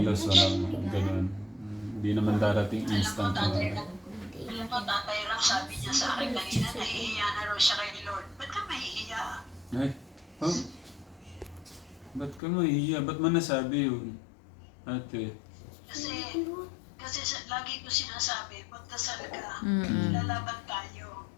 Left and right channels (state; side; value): drops out; right; at 12.4 s